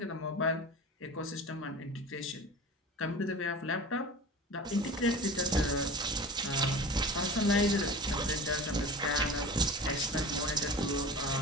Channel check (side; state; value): both; normal; correlation 0.35